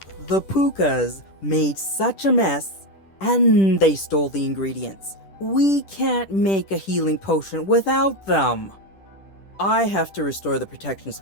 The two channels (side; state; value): right; late; 10 ms